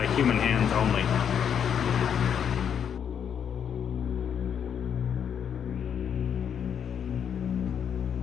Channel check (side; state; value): right; quieter; 8.1 dB